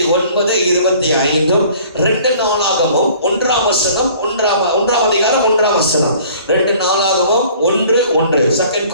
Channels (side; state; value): both; inverted; correlation -0.52